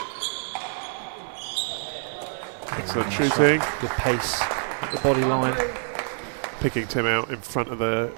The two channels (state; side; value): silent; left; 61 dB below the other